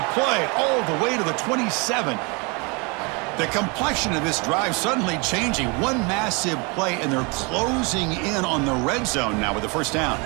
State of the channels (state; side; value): quieter; left; 30.5 dB